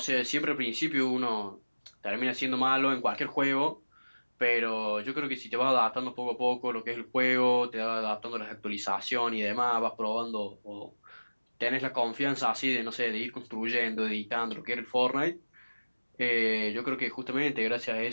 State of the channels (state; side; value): inverted; both; correlation -1.00